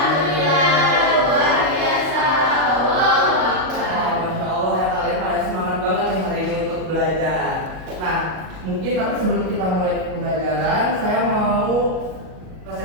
luar biasa. Allahu Akbar. Masya Allah ya, kalian pada semangat banget nih hari ini untuk belajar. Nah, mungkin tapi sebelum kita mulai pembelajaran, saya mau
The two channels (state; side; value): late; left; 38 ms